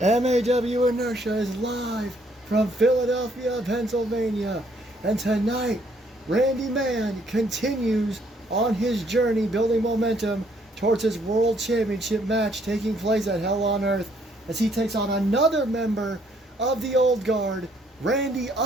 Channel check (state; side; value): normal; both; correlation 0.67